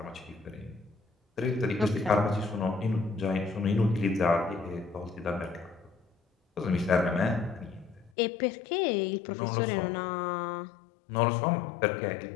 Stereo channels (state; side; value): drops out; right; at 8.1 s